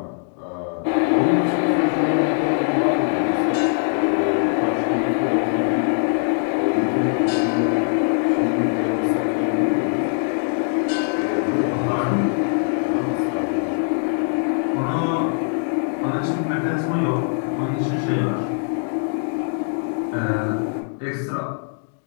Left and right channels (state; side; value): silent; right; 64 dB below the other